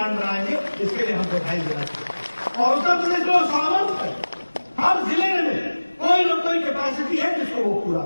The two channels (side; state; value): both; inverted; correlation -1.00